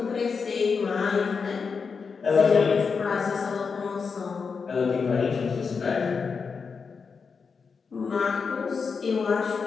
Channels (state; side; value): quieter; right; 5.4 dB